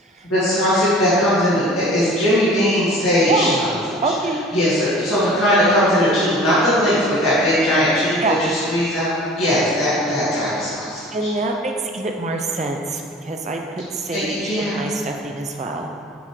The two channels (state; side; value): normal; both; correlation 0.44